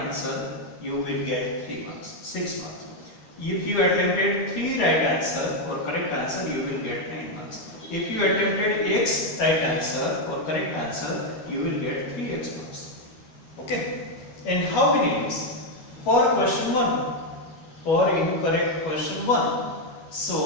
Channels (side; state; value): right; late; 12 ms